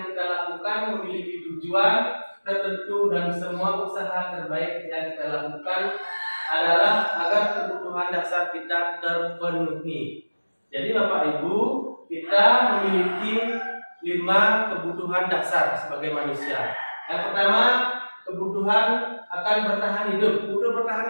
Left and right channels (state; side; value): inverted; both; correlation -1.00